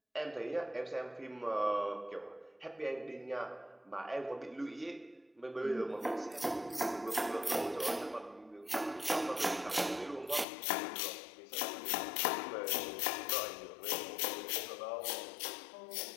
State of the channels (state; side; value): drops out; right; at 10.5 s